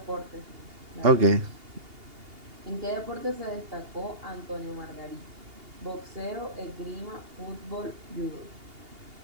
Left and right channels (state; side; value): late; left; 2.8 ms